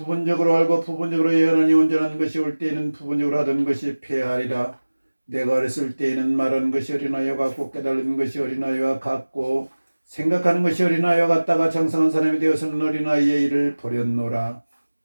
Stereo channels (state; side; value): inverted; both; correlation -1.00